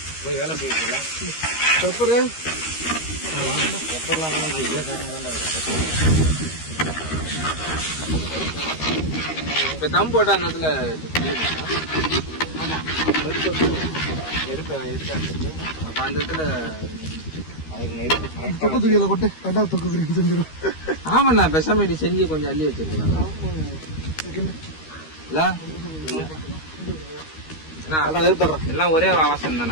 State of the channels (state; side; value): late; right; 13 ms